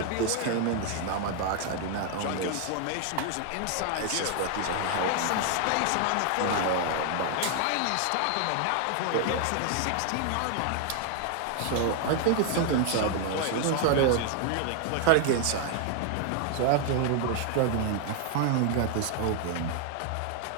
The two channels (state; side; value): different; both; correlation 0.00